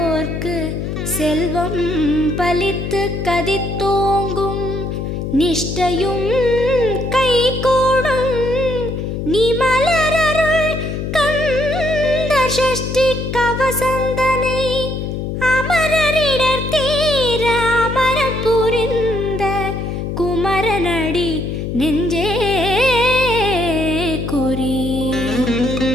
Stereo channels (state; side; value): noise; left; hum, 4 dB below the sound